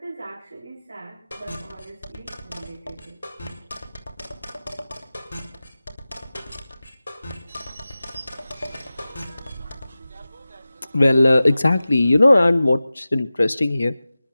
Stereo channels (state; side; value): inverted; both; correlation -0.96